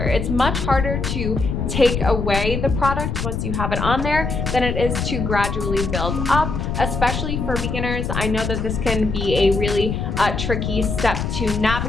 It's much harder to take away the product once you have it on there than it is to gradually build up, especially for beginners. I know that this can be a really tricky step to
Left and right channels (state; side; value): noise; left; rumble, 2 dB below the sound